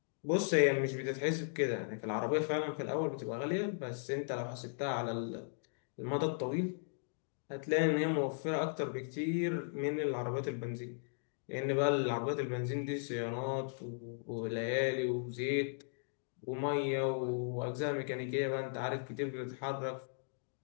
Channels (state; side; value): silent; right; digital silence